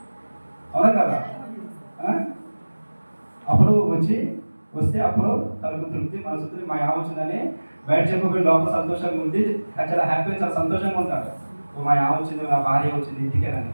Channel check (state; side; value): inverted; both; correlation -1.00